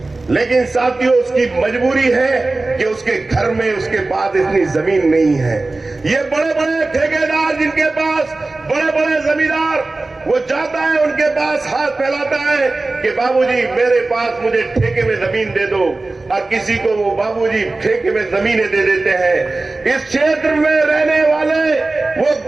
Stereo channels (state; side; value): quieter; left; 3.2 dB